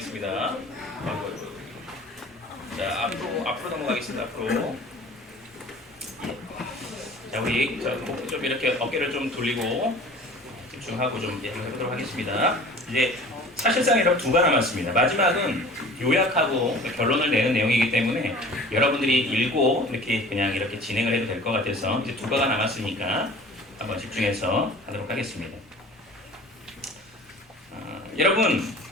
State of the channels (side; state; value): both; normal; correlation 0.44